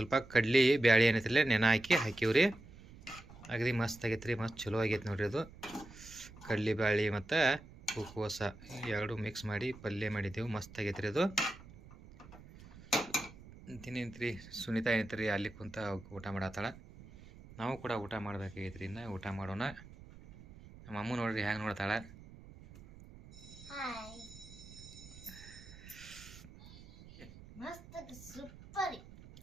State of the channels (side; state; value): right; noise; rumble, 18 dB below the sound